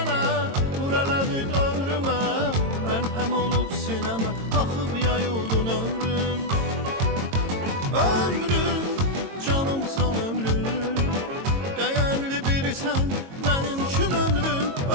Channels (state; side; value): late; left; 22 ms